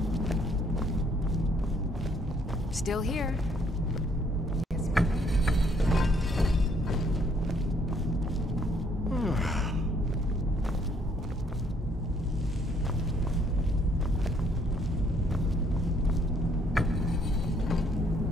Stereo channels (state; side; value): normal; both; correlation 0.66